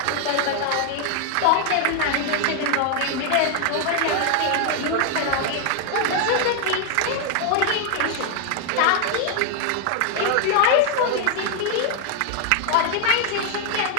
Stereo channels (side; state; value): both; different; correlation 0.00